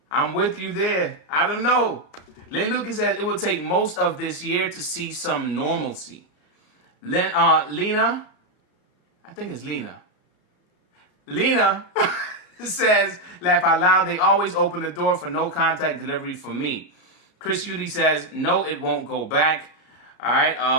I'm with you there. I don't know. Lynn Lucas says it will take most of this year to see some normalcy. Lena, I think it's Lena. Lena says, laugh out loud, they always open the door for no contact delivery for me. Chris Udy says, no, it won't go back. All right.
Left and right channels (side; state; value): right; late; 33 ms